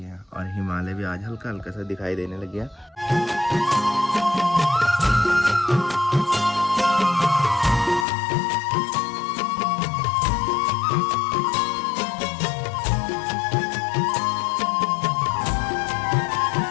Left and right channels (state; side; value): drops out; right; at 8.1 s